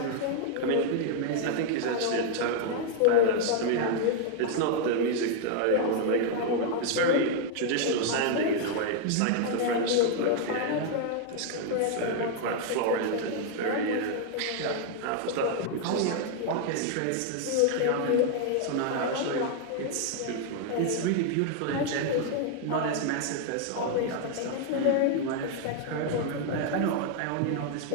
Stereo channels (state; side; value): different; both; correlation 0.00